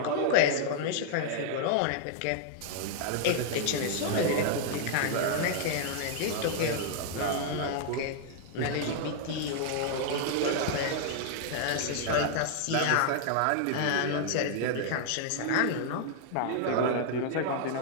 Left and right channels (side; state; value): both; different; correlation -0.01